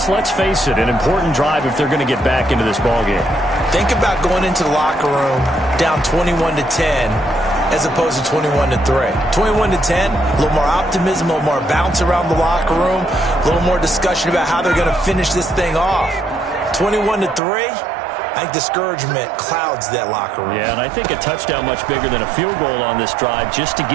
let's face it, an important drive if they're going to get back into this ballgame. Think about going into the locker room down 21-10 as opposed to 21-3. 21-10, a little more optimism, a little more bounce around the locker room, a little more discussion about how they're going to finish this thing off. 21-3, I think discouragement clouds that locker room. Yeah, and I think a touchdown much bigger than a field goal on this drive just to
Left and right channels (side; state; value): left; drops out; at 17.4 s